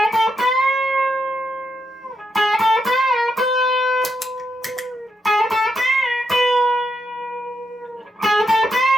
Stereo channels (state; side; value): normal; both; correlation 0.82